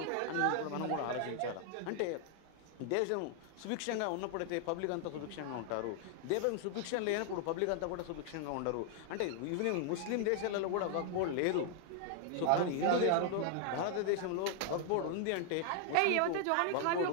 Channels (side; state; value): both; different; correlation 0.00